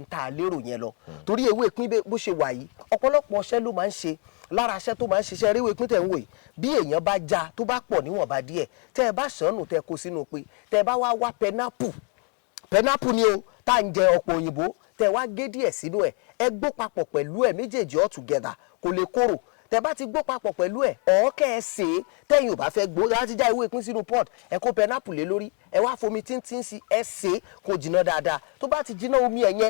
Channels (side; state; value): right; quieter; 37.3 dB